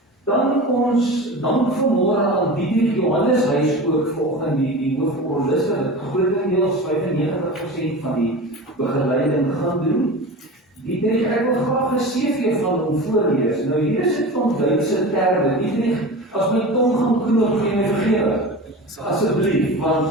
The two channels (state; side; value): normal; both; correlation 0.31